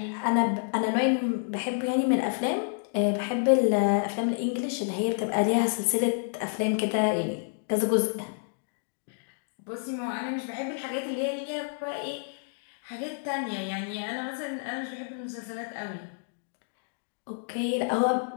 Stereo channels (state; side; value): silent; right; digital silence